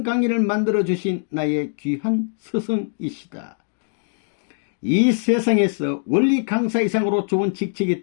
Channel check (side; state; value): right; silent; digital silence